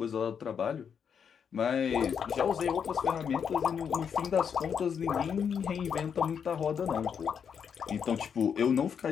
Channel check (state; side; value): quieter; right; 7.2 dB